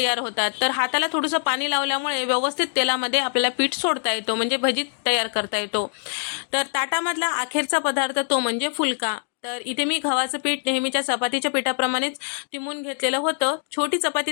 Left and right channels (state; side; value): silent; right; digital silence